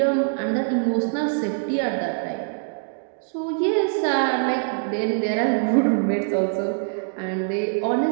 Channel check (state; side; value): silent; left; digital silence